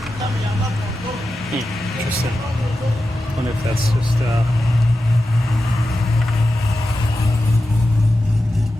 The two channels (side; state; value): both; normal; correlation 0.92